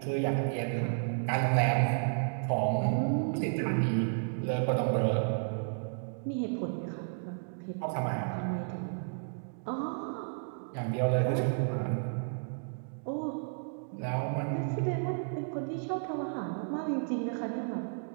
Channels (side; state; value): left; silent; digital silence